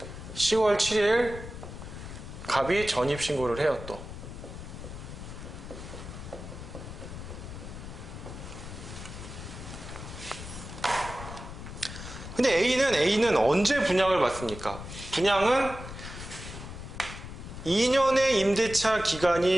10월 7일 갑이 전입신고를 해요. 또 근데 A는 언제 분양을 받습니까? 분양은 2년의 임대차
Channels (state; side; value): noise; left; rumble, 11 dB below the sound